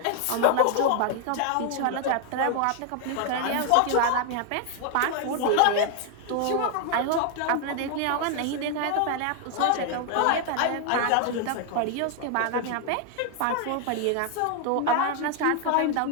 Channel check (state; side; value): different; both; correlation 0.00